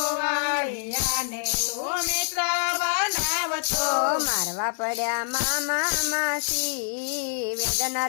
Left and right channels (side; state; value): right; silent; digital silence